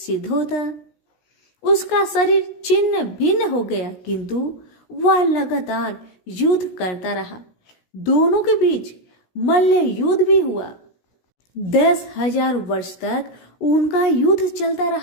होता। उसका शरीर छिन्न भिन्न हो गया, किंतु वह लगातार युद्ध करता रहा। दोनों के बीच मल्ल युद्ध भी हुआ। 10,000 वर्ष तक उनका युद्ध चलता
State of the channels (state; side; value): late; right; 16 ms